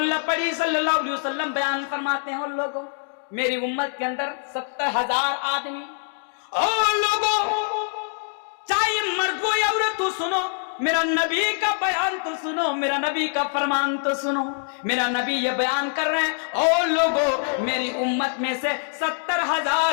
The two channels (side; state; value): right; silent; 62 dB below the other